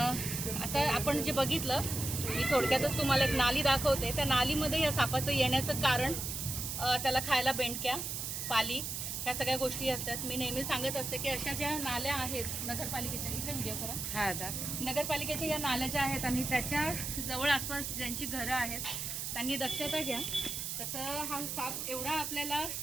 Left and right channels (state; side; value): noise; right; hiss, 4 dB below the sound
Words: आता आपण जे बघितलं मी थोडक्यातच तुम्हाला एक नाली दाखवते. त्या नालीमध्ये या सापाचं येण्याचं कारण त्याला खायला बेंडक्या, पाली ह्या सगळ्या गोष्टी असतात. मी नेहमी सांगत असते की अशा ज्या नाल्या आहेत नगरपालिकेच्या, इथे व्हिडिओ करा, नगरपालिकेच्या या नाल्या ज्या आहेत आणि त्याच्या जवळ आसपास ज्यांची घरं आहेत त्यांनी दक्षता घ्या. तसं हा साप एवढा आपल्याला